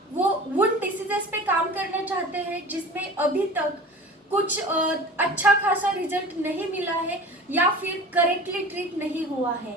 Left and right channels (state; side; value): normal; both; correlation 0.39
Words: वो उन डिसीजेस पे काम करना चाहते हैं जिसमें अभी तक कुछ अच्छा खासा रिजल्ट नहीं मिला है या फिर करेक्टली ट्रीट नहीं हुआ है।